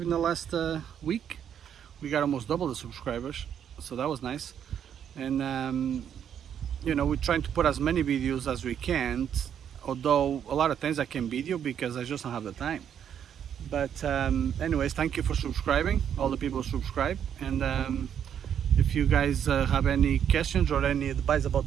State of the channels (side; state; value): left; quieter; 8.9 dB